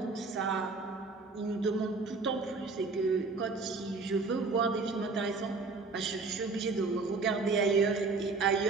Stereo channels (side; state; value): left; quieter; 4.0 dB